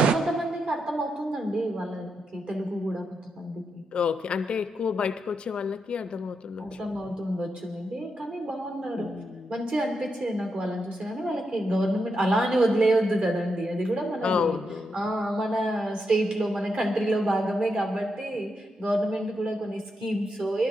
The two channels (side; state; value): both; normal; correlation 0.84